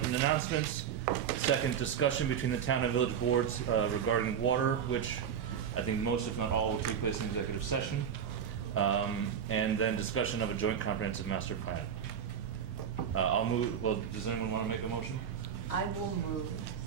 and announcements. Second, discussion between the town and village boards regarding water, which I think most, if not all, will take place in executive session. And then discussion of a joint comprehensive master plan. I'll move. Well, does anyone want to make a motion? I will move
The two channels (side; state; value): left; quieter; 8.2 dB